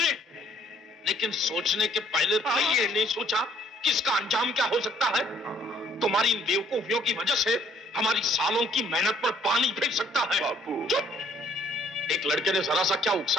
लेकिन सोचने के पहले तो ये नहीं सोचा कि इसका अंजाम क्या हो सकता है। तुम्हारी इन बेवकूफियों की वजह से हमारी सालों की मेहनत पर पानी फेंक सकता है। बापू। चुप! एक लड़के ने जरा सा क्या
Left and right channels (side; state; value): both; normal; correlation 0.62